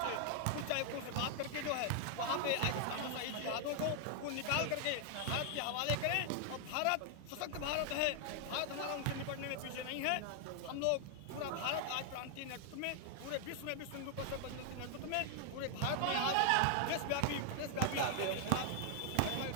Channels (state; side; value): different; both; correlation 0.00